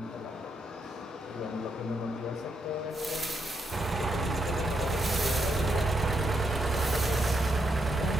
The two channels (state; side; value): normal; both; correlation 0.79